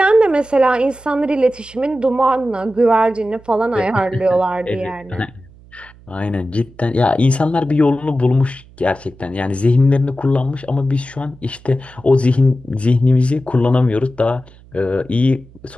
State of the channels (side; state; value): right; noise; hum, 24 dB below the sound